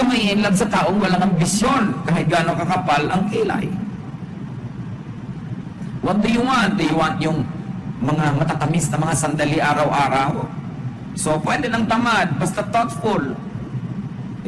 may in love sa taong walang ambisyon, kahit gano'ng kakapal ang kilay. What do you want? Do you want yung mga matatamis na mga sandali araw-araw? So, pwede ng tamad, basta thoughtful.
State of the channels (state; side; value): identical; both; correlation 1.00